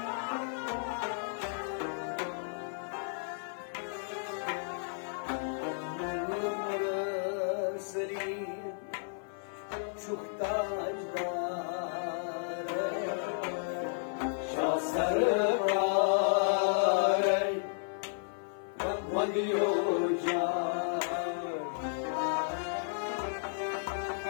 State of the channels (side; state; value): right; silent; 56 dB below the other